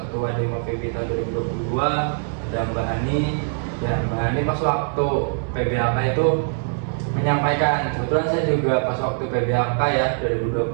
Dema FEBI tahun 2022, ada Mbak Ani. Ya, Mbak Ani pas waktu PBAK itu menyampaikan, kebetulan saya juga pas waktu PBAK ya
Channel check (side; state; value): left; silent; 64 dB below the other